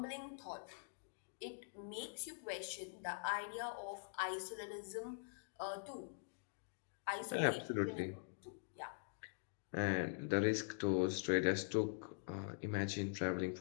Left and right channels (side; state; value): right; silent; digital silence